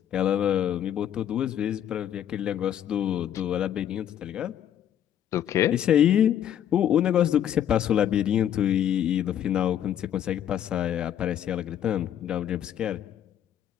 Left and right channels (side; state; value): right; quieter; 10.2 dB